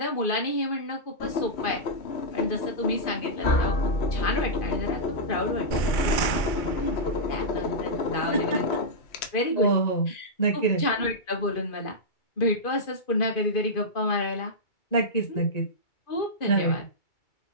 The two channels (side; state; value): right; late; 2.3 ms